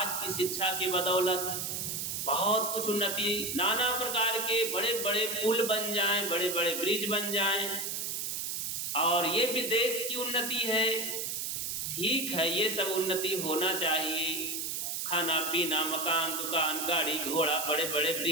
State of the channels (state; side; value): noise; right; hiss, 2 dB below the sound